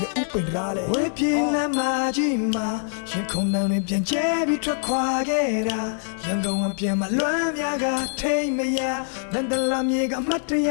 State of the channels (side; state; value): right; silent; 63 dB below the other